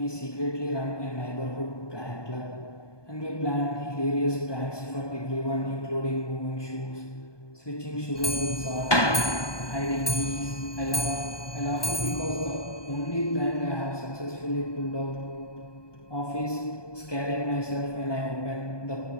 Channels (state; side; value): late; right; 1.2 ms